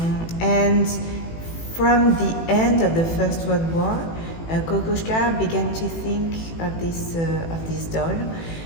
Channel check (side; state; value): right; late; 18 ms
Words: And from the end of the First World War, Kokoschka began to think of this doll.